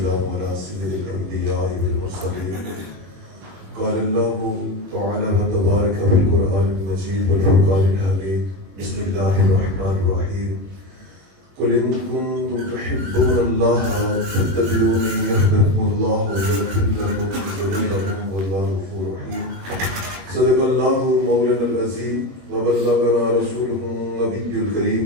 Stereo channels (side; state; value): left; late; 21 ms